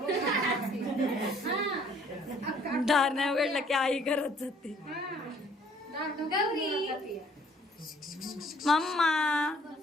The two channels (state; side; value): normal; both; correlation 0.60